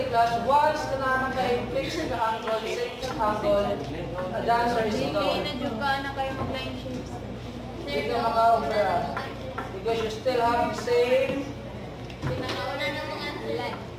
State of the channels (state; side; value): identical; both; correlation 1.00